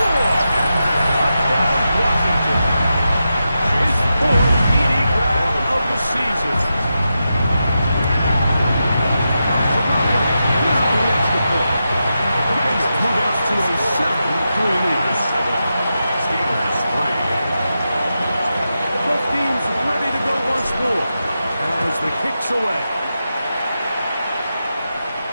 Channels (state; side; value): inverted; both; correlation -0.89